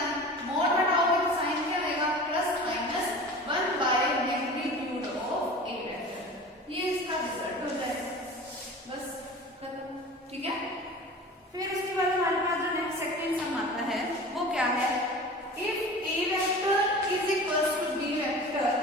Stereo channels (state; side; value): normal; both; correlation 0.37